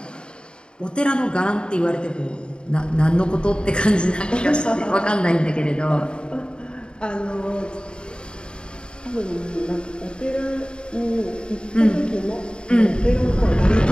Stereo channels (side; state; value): right; late; 0.051 ms